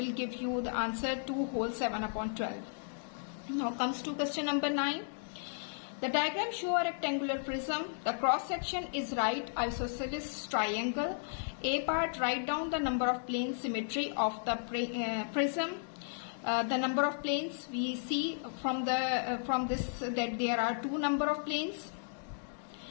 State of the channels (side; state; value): right; silent; digital silence